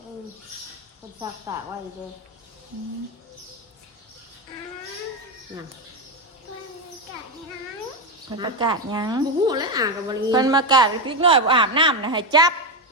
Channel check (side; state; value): both; normal; correlation 0.09